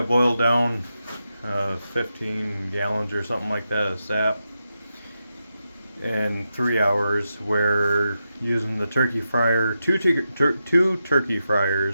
boiled down 15 gallons or something like that of sap in 3 hours, where using the turkey fryer, two turkey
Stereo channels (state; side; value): inverted; both; correlation -0.88